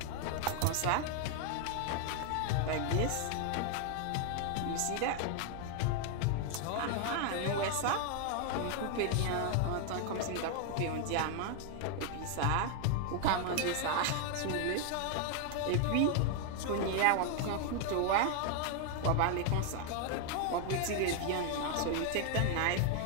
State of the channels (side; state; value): both; different; correlation 0.00